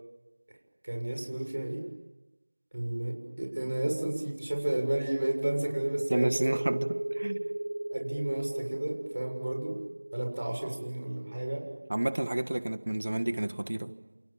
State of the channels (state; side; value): inverted; both; correlation -1.00